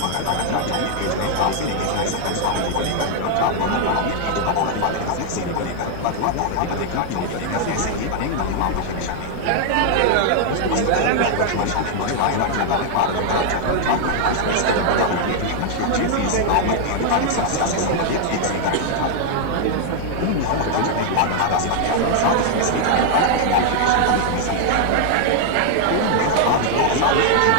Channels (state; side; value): different; both; correlation 0.00